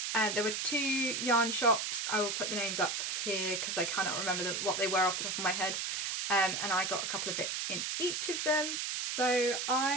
There were 2 yarn shops. I will put the names up here because I cannot remember what they were off the top of my head. And I got a couple of bits in each of them. So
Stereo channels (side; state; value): right; noise; hiss, 1 dB below the sound